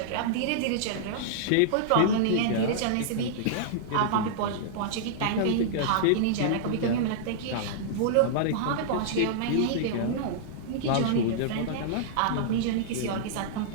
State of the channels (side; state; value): both; different; correlation -0.02